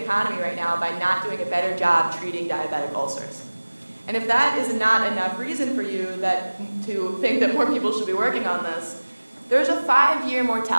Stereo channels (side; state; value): both; inverted; correlation -1.00